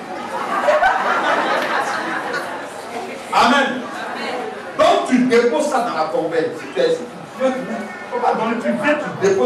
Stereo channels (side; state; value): both; identical; correlation 1.00